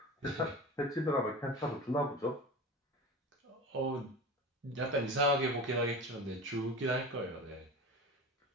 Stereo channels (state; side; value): normal; both; correlation 0.31